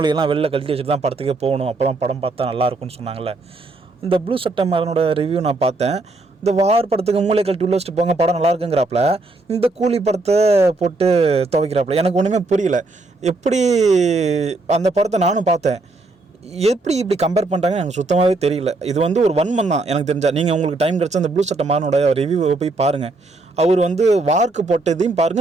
வெளில கழட்டி வச்சுட்டு தான் படத்துக்கே போகணும், அப்போ தான் படம் பார்த்தா நல்லாயிருக்குன்னு சொன்னாங்கள்ல. இந்த ப்ளூ சட்டை மாறனோட ரிவ்யூ நான் பார்த்தேன். இந்த வார் படத்துக்கு மூளை கழட்டி உள்ள வச்சுட்டு போங்க, படம் நல்லா இருக்குங்கிறாப்புல, இந்த கூலி படத்தை போட்டு துவைக்கிறாப்புல. எனக்கு ஒன்றுமே புரியல. எப்படி அந்த படத்தை நானும் பார்த்தேன், எப்படி இப்படி கம்பேர் பண்ணுறாங்கன்னு எனக்கு சுத்தமாகவே தெரியல. இது வந்து ஒரு வன்மம் தான் எனக்கு தெரிஞ்சா. நீங்கள் உங்களுக்கு டைம் கிடச்சா அந்த ப்ளூ சட்டை மாறனோட ரிவ்யூவை போய் பாருங்கள். அவர் வந்து வார்க்கு போட்டதையும்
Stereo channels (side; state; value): left; quieter; 3.2 dB